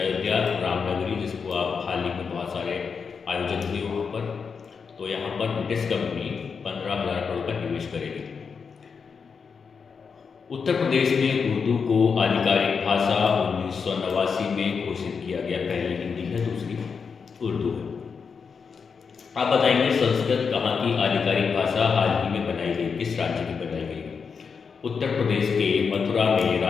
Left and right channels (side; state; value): right; quieter; 5.8 dB